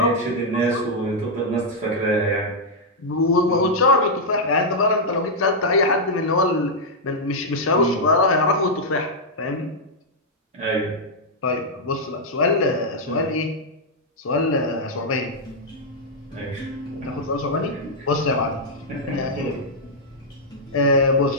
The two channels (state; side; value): normal; both; correlation -0.05